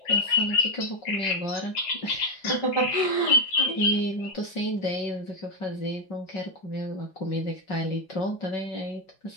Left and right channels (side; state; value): right; late; 5.6 ms